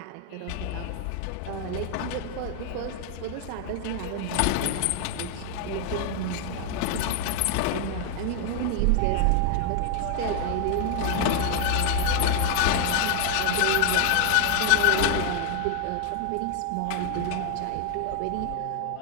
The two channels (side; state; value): both; different; correlation 0.00